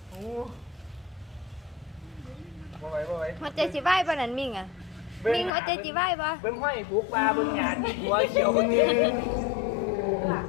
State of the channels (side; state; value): right; drops out; at 5.5 s